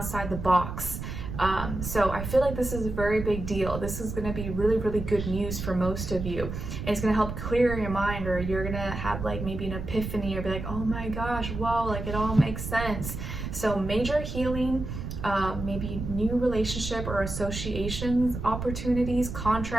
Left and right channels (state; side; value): noise; right; rumble, 6 dB below the sound